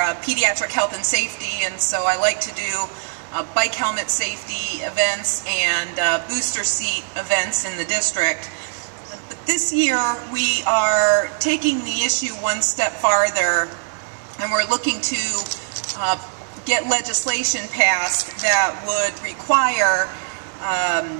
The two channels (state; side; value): silent; left; 61 dB below the other